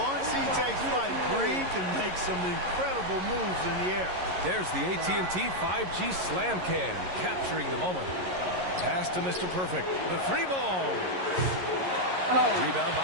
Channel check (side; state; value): left; late; 11 ms